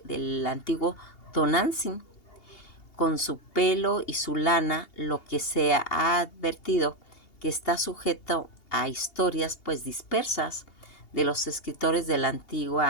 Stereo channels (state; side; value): late; right; 2.8 ms